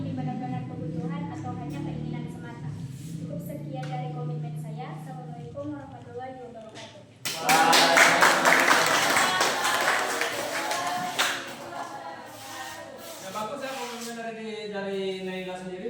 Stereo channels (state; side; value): identical; both; correlation 1.00